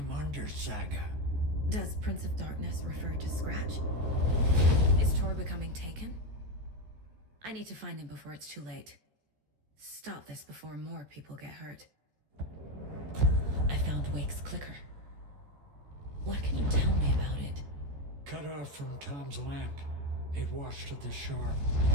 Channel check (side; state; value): left; late; 14 ms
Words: under, Saga. Does Prince of Darkness refer to Scratch? Is Tor becoming taken? I need to find him before it's too late. Stop this before more people get hurt. I found Wake's clicker. What can you tell me about it? Cut off from Tom's lamp. It washed to the shore.